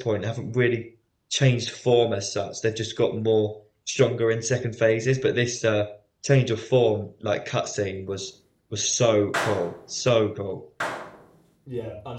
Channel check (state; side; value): identical; both; correlation 1.00